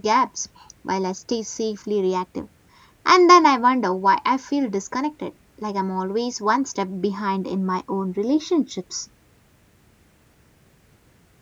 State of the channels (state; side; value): identical; both; correlation 1.00